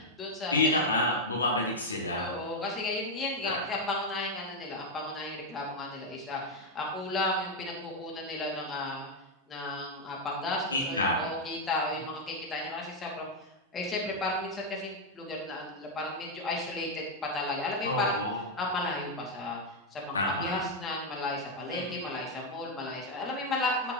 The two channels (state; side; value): normal; both; correlation 0.01